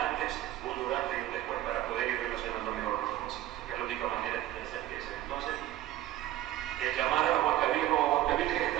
un durante y un después para poder ir relacionando mejor las cosas. Es la única manera de hacer que sea. Entonces, el llamar a Huancavilcas como Huancavilcas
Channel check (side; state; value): left; quieter; 14.3 dB